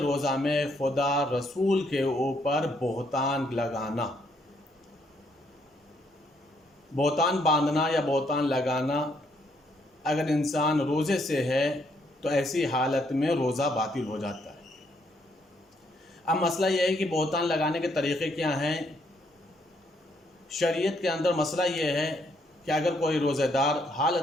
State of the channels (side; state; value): both; normal; correlation 0.71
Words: روزہ میں خدا رسول کے اوپر بہتان لگانا، بہتان باندھنا یا بہتان لگانا۔ اگر انسان روزے سے ہے تو ایسی حالت میں روزہ باطل ہو جاتا ہے۔ اب مسئلہ یہ ہے کہ بہتان لگانے کے طریقے کیا ہیں۔ شریعت کے اندر مسئلہ یہ ہے کہ اگر کوئی روزہ دار